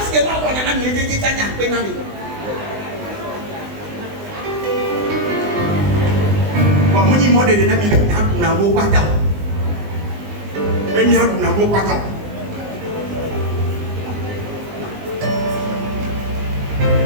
que là on a mi je tanya pe na mi ba mo ni modele na mi na wo pata e mi adu na wo pata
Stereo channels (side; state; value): left; late; 20 ms